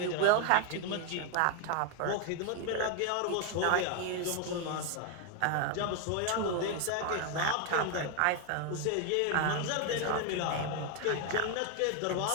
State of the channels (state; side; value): different; both; correlation 0.01